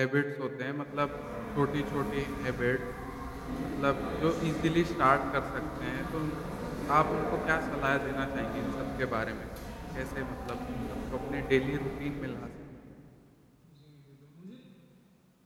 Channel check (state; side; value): identical; both; correlation 1.00